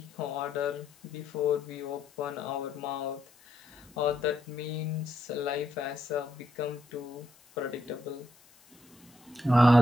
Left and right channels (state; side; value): noise; left; hiss, 27 dB below the sound